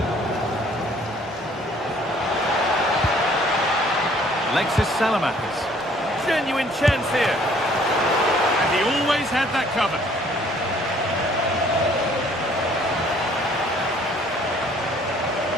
Alexis Salamakis. Genuine chance here. And he always had that covered.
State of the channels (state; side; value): normal; both; correlation 0.59